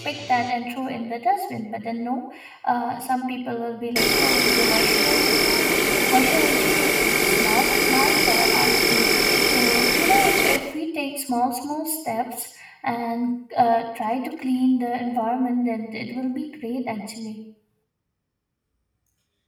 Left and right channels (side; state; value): both; identical; correlation 1.00